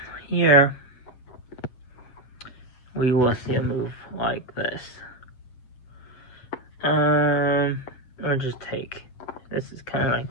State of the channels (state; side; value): late; right; 8.1 ms